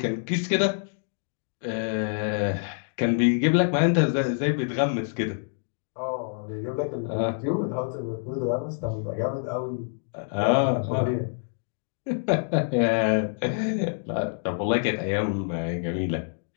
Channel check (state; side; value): silent; right; digital silence